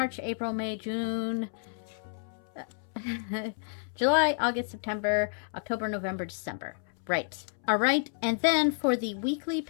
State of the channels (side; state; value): right; silent; 58 dB below the other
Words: April, May, June, July, August, September, October, November, December. Right. All right. And then for the weekly